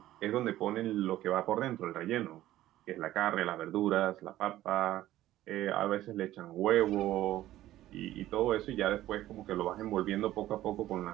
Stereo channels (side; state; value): left; quieter; 14.5 dB